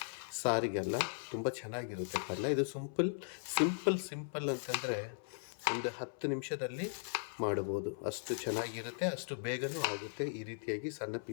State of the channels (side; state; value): right; silent; 52 dB below the other